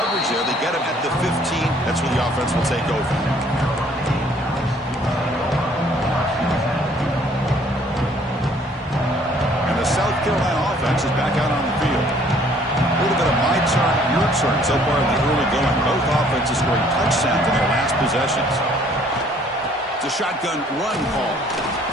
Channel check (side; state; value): both; normal; correlation 0.59